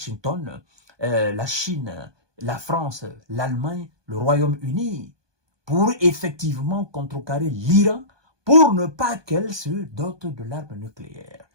la Chine, la France, l'Allemagne, le Royaume-Uni, pour effectivement contrecarrer l'Iran pour ne pas qu'elle se dote de l'arme nucléaire.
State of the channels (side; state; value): left; late; 1.2 ms